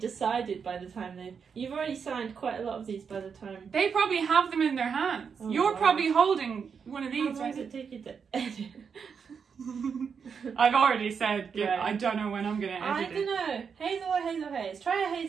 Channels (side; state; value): left; quieter; 6.3 dB